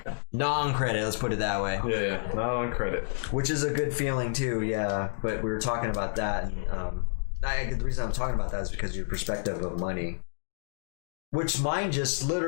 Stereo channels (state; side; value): silent; right; digital silence